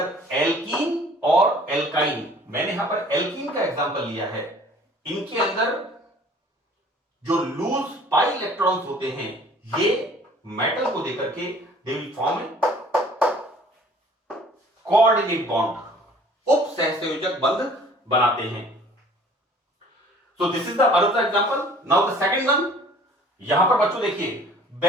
एल्कीन और एल्काइन, मैंने यहां पर एल्कीन का एग्जांपल लिया है। इनके अंदर जो लूज पाई इलेक्ट्रॉन्स होते हैं ये मेटल को देकर के they will form A coordinate bond, उप सहसंयोजक बंध बनाते हैं। So this is the another example. Now the second one, यहां पर बच्चों देखिए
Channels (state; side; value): normal; both; correlation 0.52